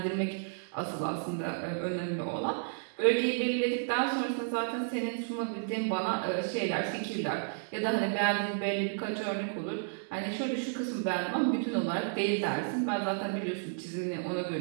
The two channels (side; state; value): left; silent; digital silence